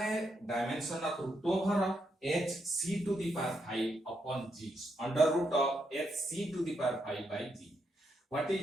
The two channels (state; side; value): normal; both; correlation 0.80